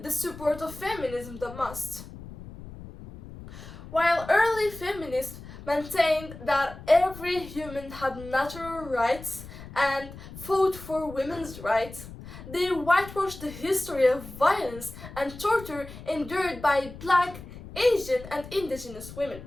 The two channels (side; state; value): left; noise; rumble, 14 dB below the sound